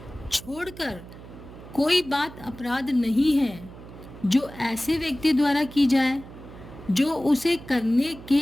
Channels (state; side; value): noise; right; hum, 16 dB below the sound